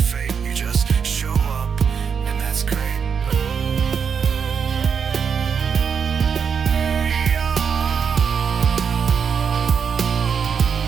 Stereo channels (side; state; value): left; quieter; 6.6 dB